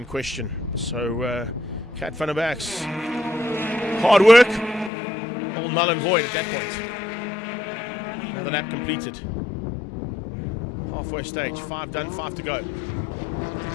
question. So Kat van der Berg's hard work, all null and void at that point. Another lap completed. Halfway stage, 5 done, 5 to go.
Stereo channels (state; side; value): drops out; right; at 4.9 s